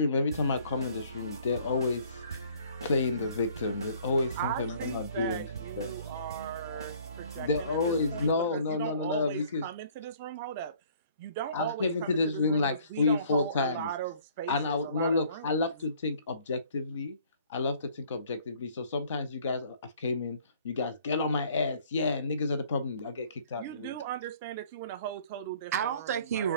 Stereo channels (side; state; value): both; inverted; correlation -0.57